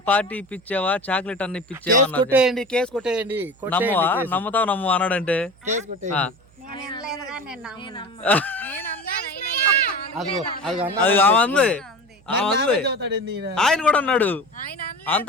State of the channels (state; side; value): noise; right; hum, 29 dB below the sound